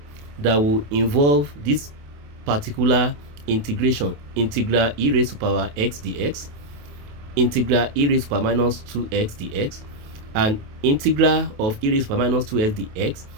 that will involve this particular integration, integral e raised to power x dx, integral e raised to power minus 2x dx, and integral of e raised to power minus 2x dx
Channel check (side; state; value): left; late; 28 ms